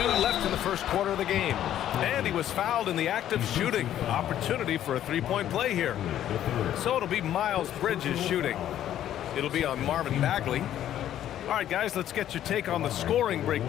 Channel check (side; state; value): right; quieter; 11.5 dB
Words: left in the first quarter of the game. And he was fouled in the act of shooting. Opportunity for a three-point play here. So it'll be Miles Bridges shooting. It'll be on Marvin Bagley. All right, guys, let's get your take on the scoring